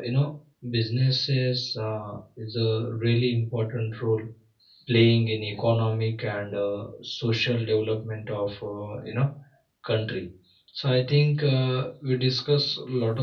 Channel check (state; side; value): identical; both; correlation 1.00